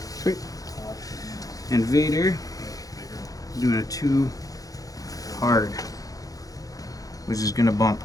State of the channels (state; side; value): late; right; 0.17 ms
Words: Sweet. And Vader doing a 2 hard, which is gonna bump.